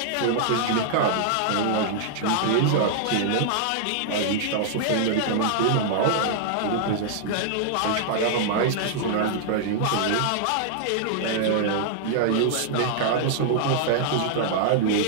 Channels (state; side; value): different; both; correlation -0.01